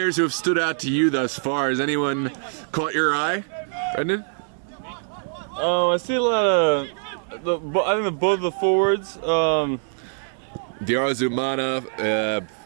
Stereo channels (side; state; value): left; silent; 63 dB below the other